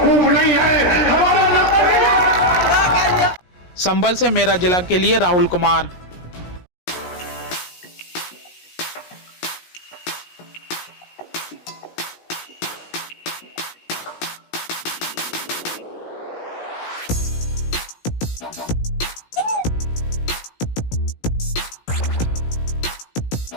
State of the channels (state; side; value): late; right; 17 ms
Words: मूव नहीं है, हमारा नंबर नहीं है। संभल से मेरा जिला के लिए राहुल कुमार।